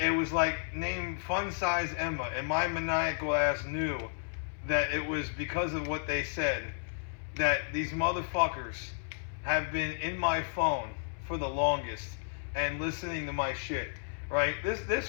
was like named Fun Size Emma, and my maniacal ass knew that it was because of what they said that these motherfuckers have been in my phone for the longest and listening to my shit, right? This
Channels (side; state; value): right; silent; 56 dB below the other